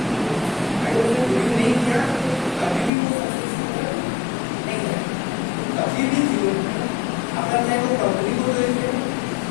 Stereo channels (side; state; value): right; drops out; at 2.9 s